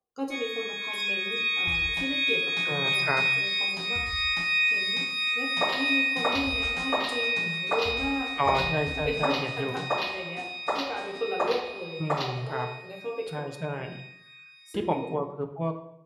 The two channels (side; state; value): both; identical; correlation 1.00